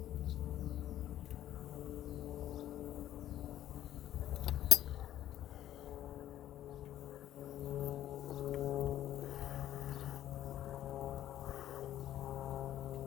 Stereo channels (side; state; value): right; quieter; 12.5 dB